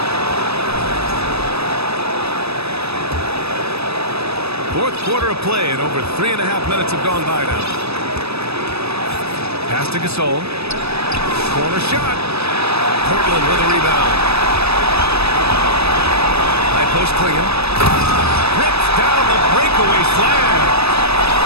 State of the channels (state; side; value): late; left; 0.78 ms